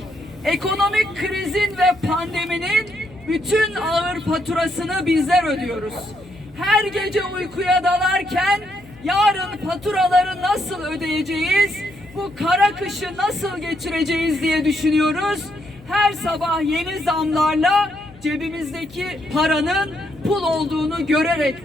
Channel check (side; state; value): left; noise; hum, 22 dB below the sound